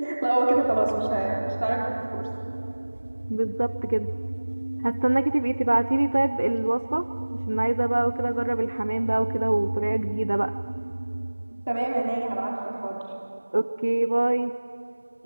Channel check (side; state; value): both; inverted; correlation -1.00